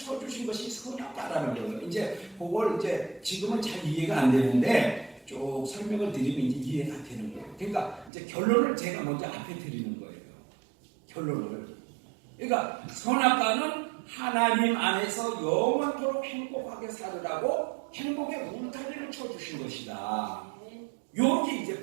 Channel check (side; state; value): left; drops out; at 8.1 s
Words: 것이 선악과라는 거예요. 이제 그걸 지금은 잘 이해가 안 되는데 쭉 설명을 드리면 이제 이해가 되는 거예요. 그러니까 이제 결론을 제가 먼저 앞에 드리는 거예요. 결론을. 그러니까 선악과는 하나님 안에서 영원토록 행복하게 살으라고 행복의 울타리를 쳐주신 것이다. 여기